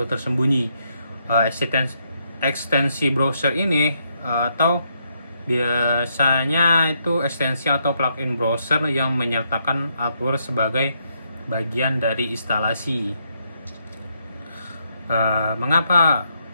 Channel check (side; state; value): both; inverted; correlation -0.76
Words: tersembunyi. Ekstensi browser ini atau Biasanya itu ekstensi atau plugin browser yang menyertakan adware sebagai bagian dari instalasi. Mengapa